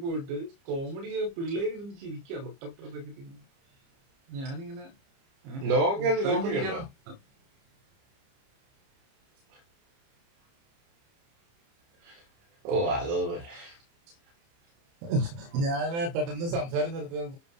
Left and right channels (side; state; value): left; late; 30 ms